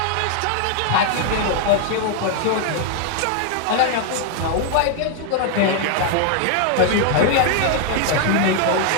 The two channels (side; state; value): both; different; correlation 0.00